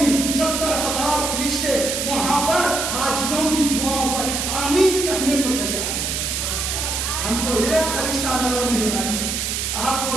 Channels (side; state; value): right; noise; hiss, 1 dB below the sound